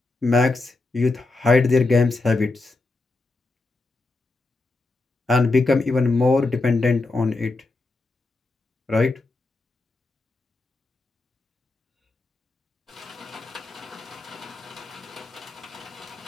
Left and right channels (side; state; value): right; quieter; 3.3 dB